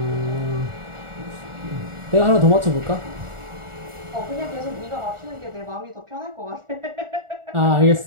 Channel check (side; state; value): left; late; 1.4 ms